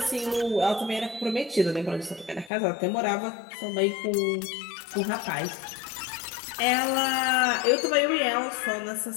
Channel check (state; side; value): drops out; right; at 2.5 s